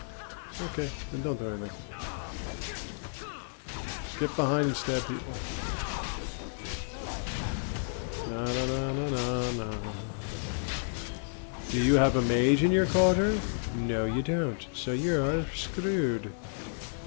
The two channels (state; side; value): silent; right; digital silence